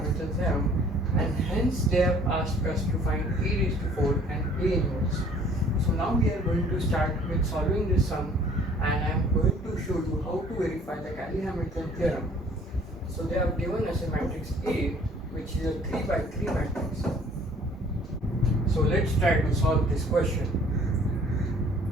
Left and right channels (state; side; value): normal; both; correlation 0.55